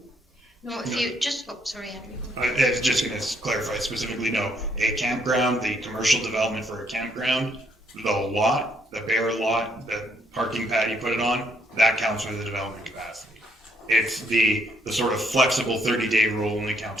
No, if you just, sorry, Andrew. I was just going to clarify specifically, no. A campground, the commercial development for a campground, the lot, the bare lot, parking pad you put it on, that counts for the development capacity. It's the sort of flexible 30-day rule only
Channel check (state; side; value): normal; both; correlation 0.70